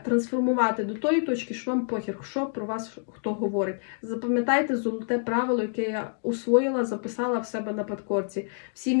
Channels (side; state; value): right; silent; 60 dB below the other